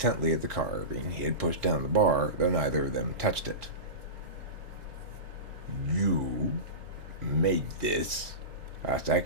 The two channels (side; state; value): left; late; 3.3 ms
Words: at the carving he had pushed down the bar, though neither of them touched it. You made this? Asked